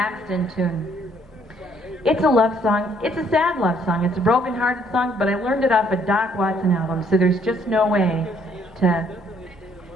tune. It's a love song. It's a sad love song. It's a broken-hearted song, but I learned it off a Doc Watson album, so there's just no way to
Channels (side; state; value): both; normal; correlation 0.65